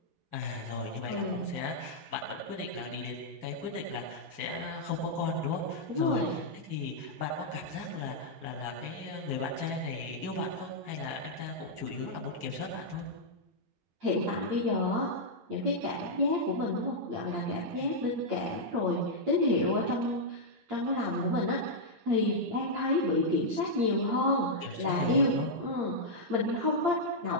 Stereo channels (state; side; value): late; left; 8.6 ms